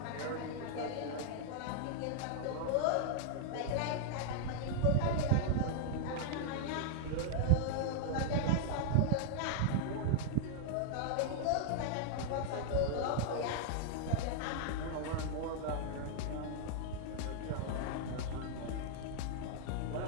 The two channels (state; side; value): different; both; correlation -0.01